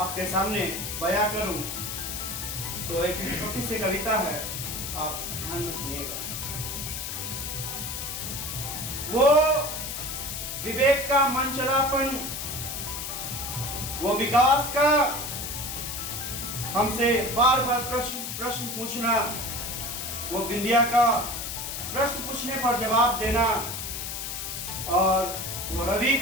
सामने बयां करूं। तो एक छोटी सी कविता है, आप ध्यान से सुनिएगा। वो विवेक का मंचलापन, वो विकास का हमसे बार बार प्रश्न पूछना, वो बिंदिया का प्रश्न पूछने पर जवाब देना, और वो रवि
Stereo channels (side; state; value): left; noise; hiss, 5 dB below the sound